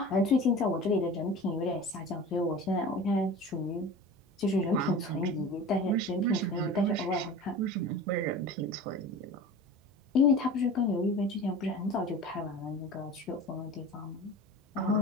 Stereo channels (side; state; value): both; normal; correlation 0.36